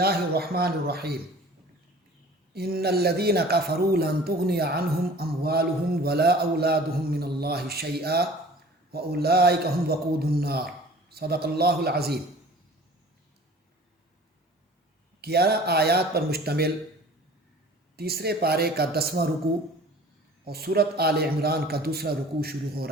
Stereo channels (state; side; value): normal; both; correlation 0.46